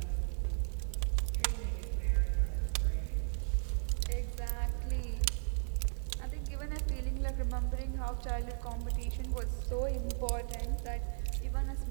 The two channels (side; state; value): left; silent; digital silence